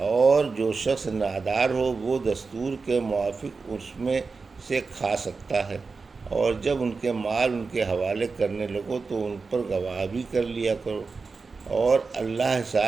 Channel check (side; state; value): left; quieter; 4.4 dB